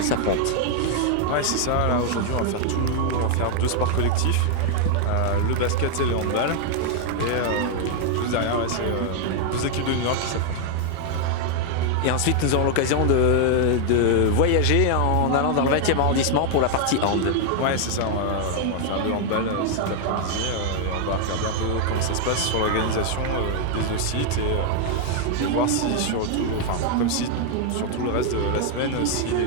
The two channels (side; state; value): both; different; correlation 0.00